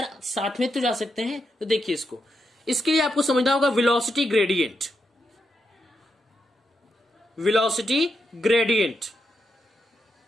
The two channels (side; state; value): both; normal; correlation 0.83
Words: साथ में तो जा सकते हैं, तो देखिए इसके लिए आपको समझना होगा velocity gradient. Velocity gradient,